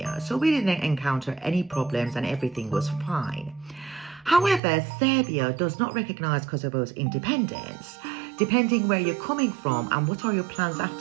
so we didn't encounter any problems and everything was fine. However, Serbia does not recognize Kosovo's independence. Depending where you're coming from and what are your plans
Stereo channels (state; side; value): drops out; left; at 4.6 s